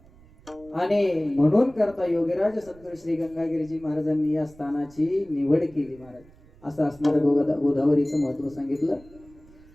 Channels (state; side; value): noise; right; rumble, 25 dB below the sound